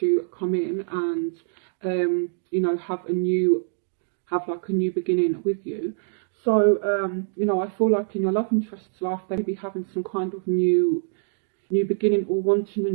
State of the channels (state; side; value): silent; left; digital silence